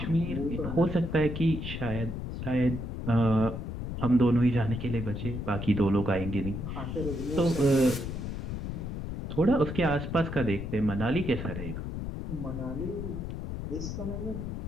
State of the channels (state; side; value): noise; left; rumble, 5 dB below the sound